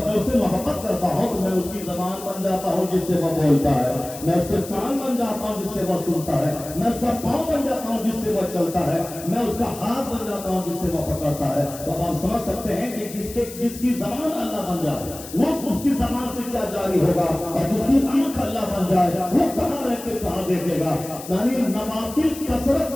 میں اس سے محبت کرتا ہوں تو میں اس کی زبان بن جاتا ہوں جس سے وہ بولتا ہے، میں اس کے کان بن جاتا ہوں جس سے وہ سنتا ہے، میں اس کا پاؤں بن جاتا ہوں جس سے وہ چلتا ہے، میں اس کا ہاتھ بن جاتا ہوں جس سے وہ پکڑتا ہے۔ تو اب آپ سمجھ سکتے ہیں کہ جس کی زبان اللہ بن جائے وہ اس کی زبان سے کیا جاری ہوگا، اور جس کی آنکھ اللہ بن جائے وہ کہاں رہ کے کہاں دیکھے گا۔ یعنی نوافل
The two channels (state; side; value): noise; left; hiss, 14 dB below the sound